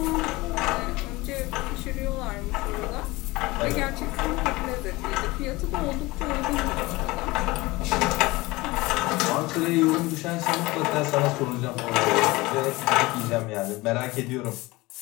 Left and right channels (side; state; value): right; quieter; 21.3 dB